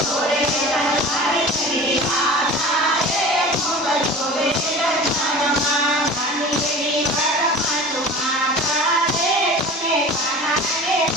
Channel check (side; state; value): both; normal; correlation 0.38